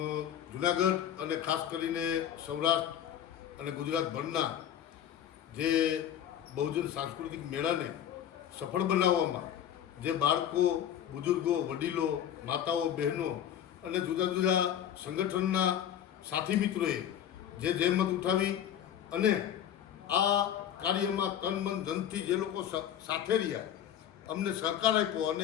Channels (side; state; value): right; quieter; 10.2 dB